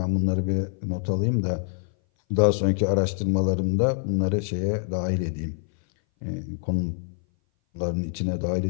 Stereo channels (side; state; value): right; silent; 58 dB below the other